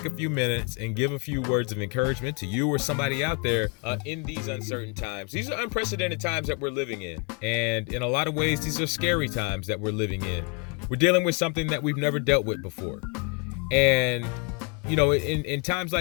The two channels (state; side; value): quieter; right; 34.7 dB